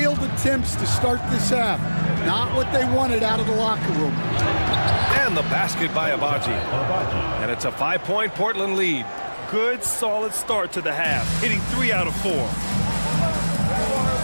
attempts to start this half. Not what they wanted out of the locker room. And the basket by Abaji. And it's a 5-point Portland lead. Good, solid start to the half, hitting 3 out of 4.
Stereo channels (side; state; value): both; inverted; correlation -1.00